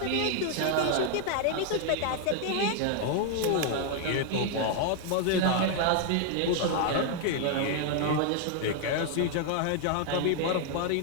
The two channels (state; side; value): different; both; correlation 0.00